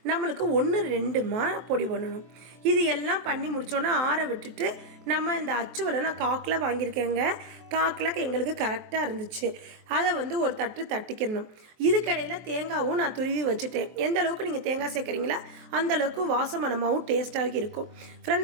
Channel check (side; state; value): left; late; 23 ms